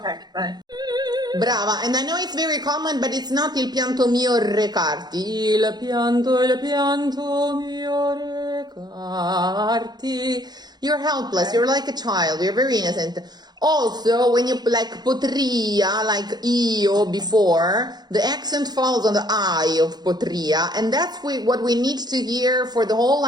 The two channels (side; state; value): left; late; 0.20 ms